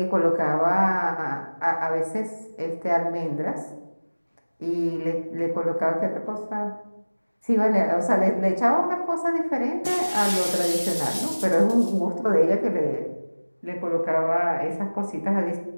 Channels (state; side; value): inverted; both; correlation -1.00